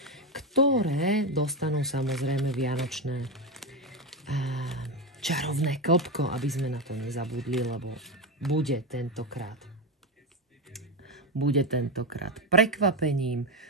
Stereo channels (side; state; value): both; normal; correlation 0.13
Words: ktoré dostanú samozrejme vianočné čarovné klbko, aby sme na to nezabudli, lebo bude tentokrát prekvapením